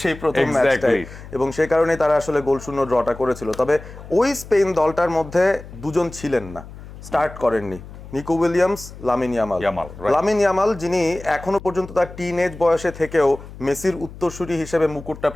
সেই প্রথম ম্যাচটাই, এবং সেই কারণেই তারা আসলে গোল শূন্য ড্রটা করেছিল। তবে ওই স্পেন দলটার মধ্যে দুজন ছিলেন না, স্টার্ট করেননি, Nico Williams, Lamine Yamal. Lamine Yamal, যিনি এখনো পর্যন্ত তার টিনএজ বয়সে থেকেও মেসির উত্তরসূরি হিসেবে মুকুটটা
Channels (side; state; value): left; noise; hum, 15 dB below the sound